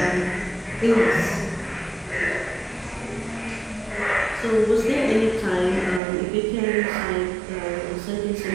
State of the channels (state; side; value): drops out; left; at 6.0 s